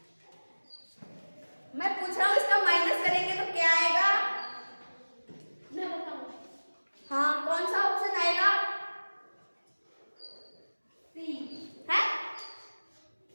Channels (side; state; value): both; inverted; correlation -1.00